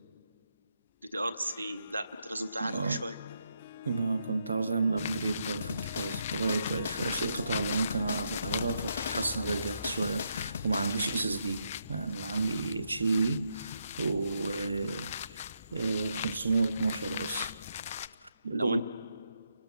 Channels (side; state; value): both; inverted; correlation -0.79